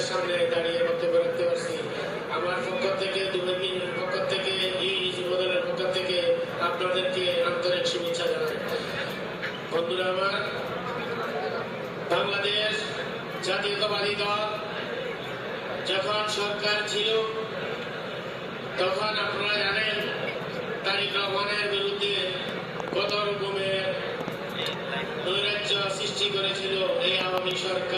সামনে দাঁড়িয়ে বক্তব্য রাখতে পারছি। আমার পক্ষ থেকে, দুর্নীতির পক্ষ থেকে, এই যুবদলের পক্ষ থেকে আপনাদেরকে আন্তরিক শুভেচ্ছা জানাই। বন্ধুরা আমার, বাংলাদেশ জাতীয়তাবাদী দল যখন সরকার ছিল তখন আপনারা জানেন তারেক রহমানের বিরুদ্ধে কত রকমের নৈরাজ্য সৃষ্টি করেছিল এই আওয়ামী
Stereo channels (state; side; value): identical; both; correlation 1.00